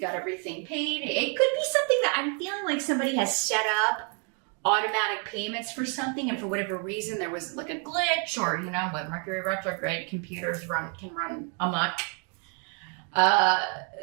everything paid. It could be something that I'm feeling like somebody has set up automatic payments for something, and for whatever reason there was like a glitch, or with Mercury retrograde, computers can run amok.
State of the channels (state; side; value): quieter; left; 39.2 dB